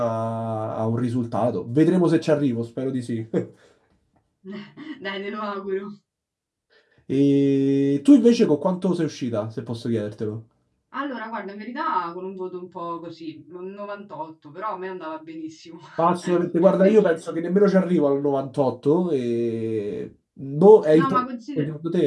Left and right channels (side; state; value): both; identical; correlation 1.00